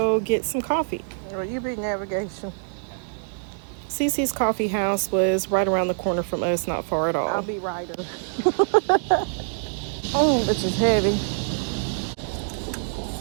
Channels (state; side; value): silent; left; digital silence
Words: get some coffee. Well, you be navigation. Cece's Coffee House was right around the corner from us, not far at all. I'll be rider. Oh, this is heavy.